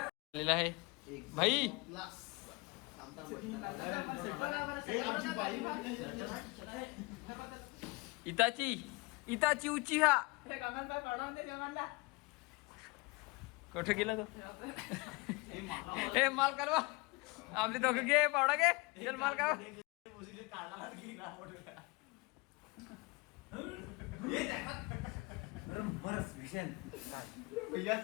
आलेला आहे भाई. इताची उची हा कुठं गेला तो? हे माल कालवा आपले दोघं घे पावडा घे चल माल कालवा.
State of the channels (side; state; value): right; quieter; 26.2 dB